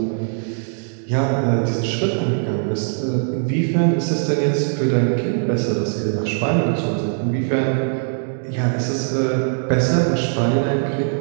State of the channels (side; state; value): left; silent; digital silence